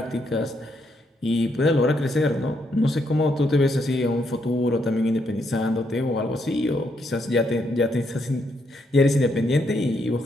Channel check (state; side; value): normal; both; correlation 0.76